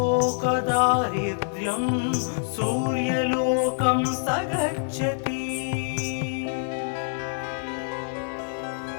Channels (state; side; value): silent; right; digital silence